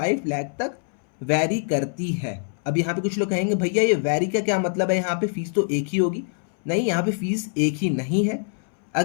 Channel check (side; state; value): right; silent; 63 dB below the other